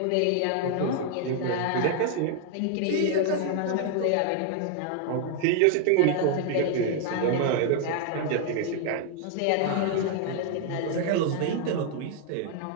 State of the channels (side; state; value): both; different; correlation 0.00